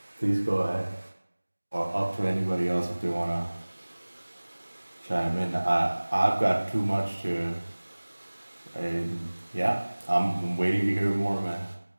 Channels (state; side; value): inverted; both; correlation -1.00